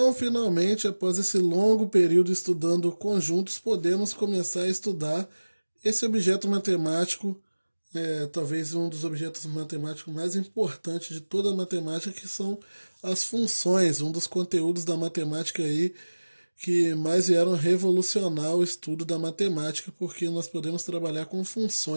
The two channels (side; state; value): both; inverted; correlation -1.00